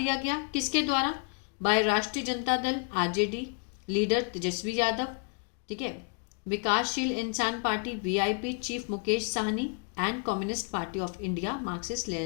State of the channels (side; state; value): right; quieter; 37.8 dB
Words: गया किसके द्वारा, बाय राष्ट्रीय जनता दल RJD लीडर तेजस्वी यादव, ठीक है, विकासशील इंसान party VIP chief Mukesh Sahni, and communist party of India Marxist